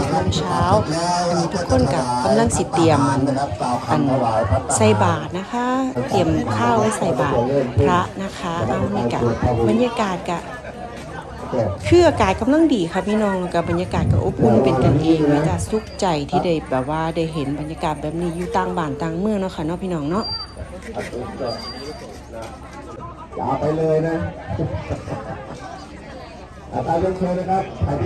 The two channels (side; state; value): both; identical; correlation 1.00